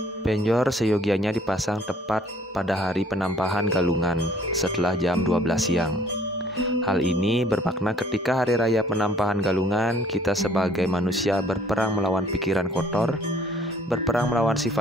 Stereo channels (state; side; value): normal; both; correlation 0.58